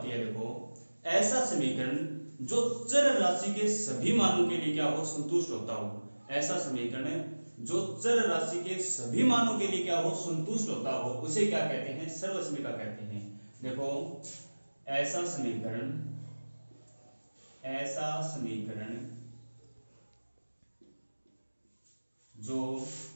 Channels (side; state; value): both; inverted; correlation -1.00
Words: है? देखो ऐसा समीकरण जो चर राशि के सभी मानों के लिए क्या हो? संतुष्ट होता हो। ऐसा समीकरण जो चर राशि के सभी मानों के लिए क्या हो? संतुष्ट होता हो, उसे क्या कहते हैं? सर्वसमीका कहते हैं। देखो ऐसा समीकरण जो